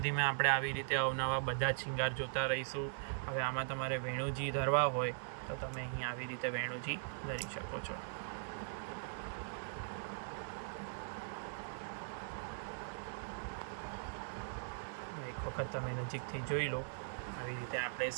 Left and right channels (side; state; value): left; silent; digital silence